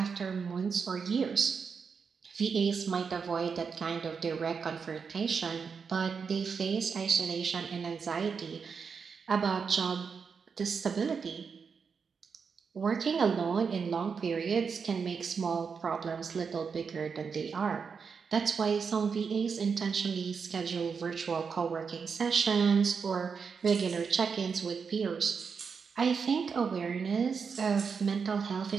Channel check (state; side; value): quieter; left; 5.8 dB